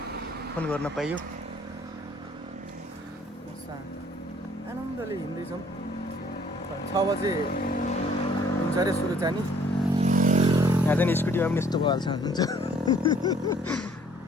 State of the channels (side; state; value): both; normal; correlation 0.59